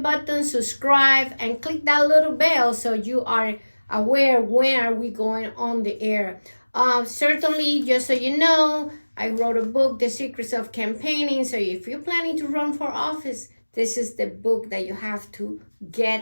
subscribe, and click that little bell so you are aware when are we going on the air. Certainly, just so you know, I wrote a book, The Secrets of Campaigning. So if you're planning to run for office, this is the book that you have to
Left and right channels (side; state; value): both; inverted; correlation -1.00